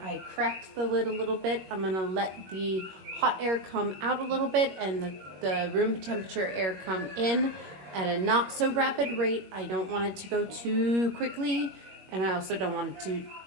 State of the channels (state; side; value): late; left; 21 ms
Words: I cracked the lid a little bit. I'm gonna let the hot air come out a little bit and the room temperature air come in at a not so rapid rate. I don't want it to go too quickly, and I also don't want it to,